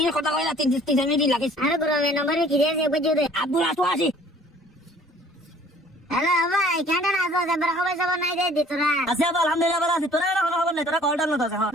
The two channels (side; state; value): both; normal; correlation 0.54